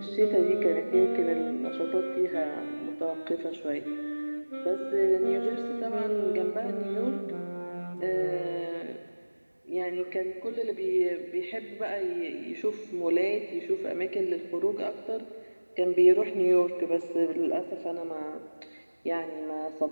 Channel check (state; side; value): inverted; both; correlation -1.00